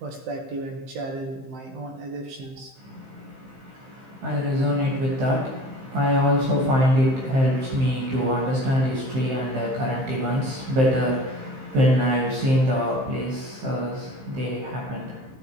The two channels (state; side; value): late; left; 15 ms